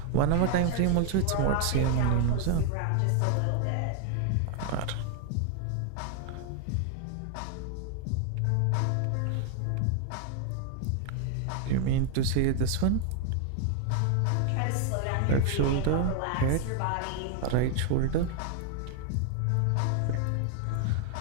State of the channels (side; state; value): both; different; correlation 0.00